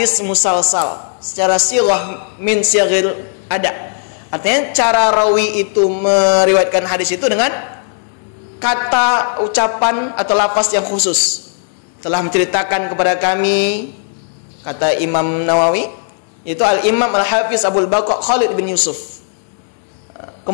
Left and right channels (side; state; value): right; silent; digital silence